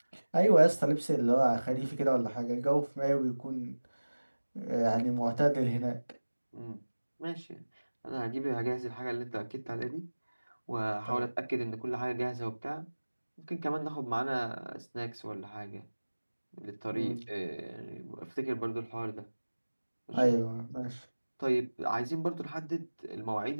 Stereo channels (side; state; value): both; inverted; correlation -1.00